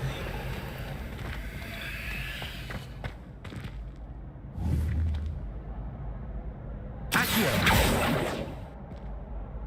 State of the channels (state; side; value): identical; both; correlation 1.00